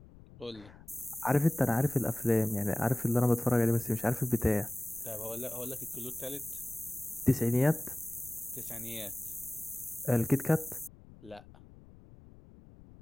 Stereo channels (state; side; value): noise; left; rumble, 22 dB below the sound